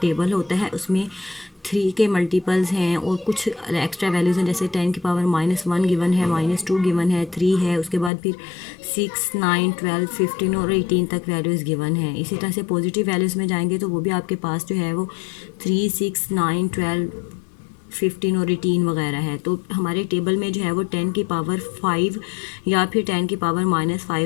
होता है उसमें 3 के मल्टीपल्स हैं और कुछ एक्स्ट्रा वैल्यूज़ हैं, जैसे 10⁻⁻1 गिवन है, -2 गिवन है, 3 है, उसके बाद फिर 6, 9, 12, 15 और 18 तक वैल्यूज़ गिवन है। इसी तरह से पॉजिटिव वैल्यूज़ में जाएंगे तो वो भी आपके पास जो है वो 3, 6, 9, 12, 15 और 18 वगैरह है। तो हमारे टेबल में जो है वो 10⁵ या फिर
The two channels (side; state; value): right; drops out; at 8.1 s